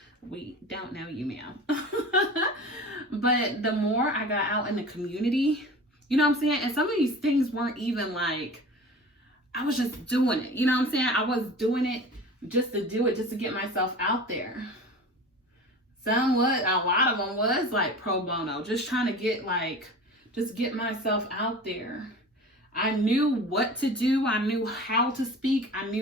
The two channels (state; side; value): normal; both; correlation 0.37